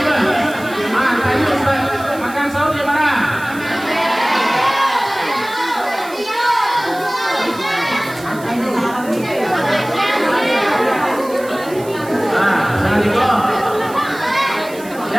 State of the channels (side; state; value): right; noise; hiss, 19 dB below the sound